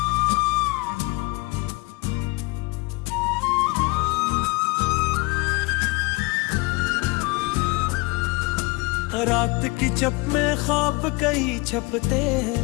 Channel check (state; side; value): quieter; right; 25.4 dB